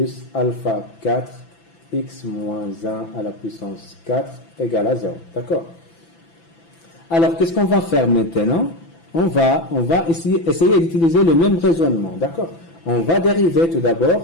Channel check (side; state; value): right; late; 6.0 ms